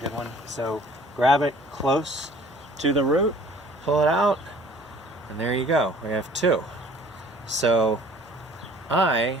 one. So grab it close to the root, pull it out, and there you go. We have two. So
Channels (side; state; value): both; normal; correlation 0.52